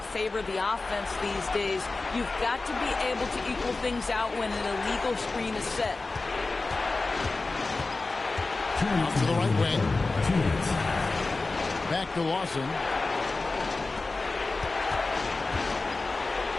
favor the offense these days. You've got to be able to equal things out when an illegal screen is set. Out to the right wing. Back to Lawson.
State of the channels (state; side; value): quieter; right; 3.5 dB